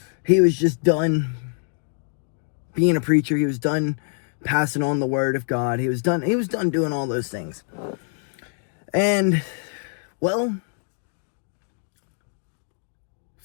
he was just done being a preacher. He was done passing on the word of God. He was done doing all those things. And, well,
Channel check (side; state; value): right; silent; 62 dB below the other